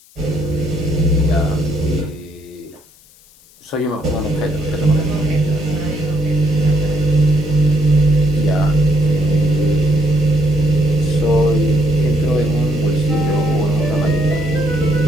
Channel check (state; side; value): noise; left; hiss, 28 dB below the sound